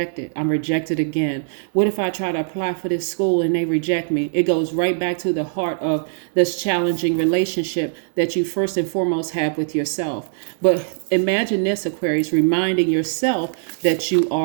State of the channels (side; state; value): left; silent; digital silence